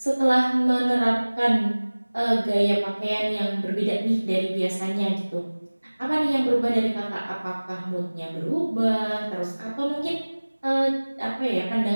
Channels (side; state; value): both; inverted; correlation -1.00